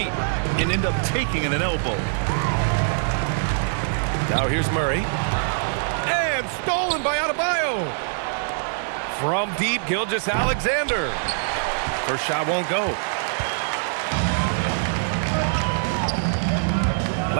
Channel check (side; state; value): left; silent; 63 dB below the other